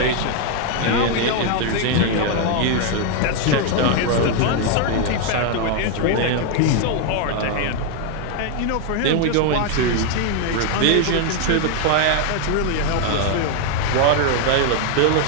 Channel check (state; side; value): different; both; correlation 0.01